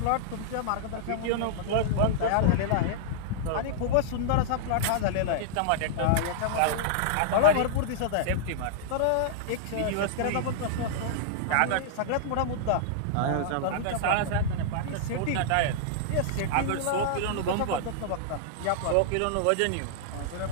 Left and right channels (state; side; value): different; both; correlation -0.02